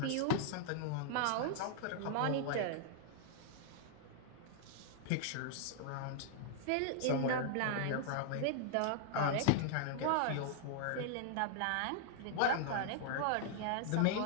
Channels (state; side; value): different; both; correlation -0.01